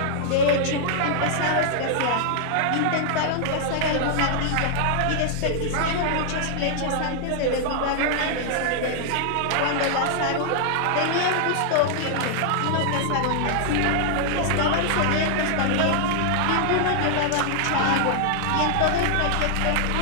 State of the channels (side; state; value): both; different; correlation 0.00